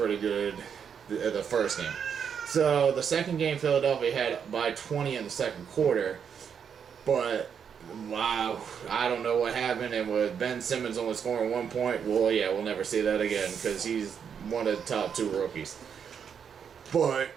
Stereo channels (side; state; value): left; quieter; 7.4 dB